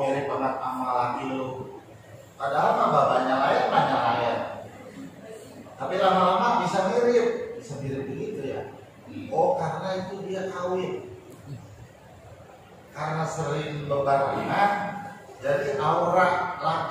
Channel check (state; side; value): identical; both; correlation 1.00